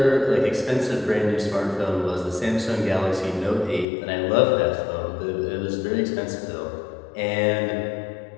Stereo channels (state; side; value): drops out; right; at 3.9 s